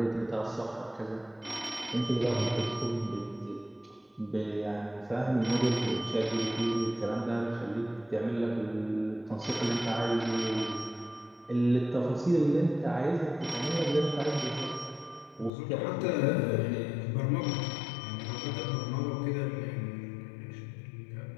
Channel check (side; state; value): right; drops out; at 15.5 s